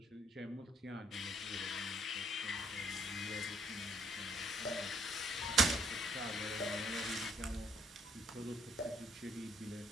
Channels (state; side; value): normal; both; correlation 0.66